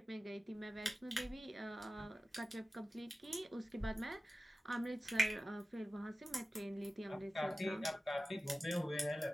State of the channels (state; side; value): normal; both; correlation 0.95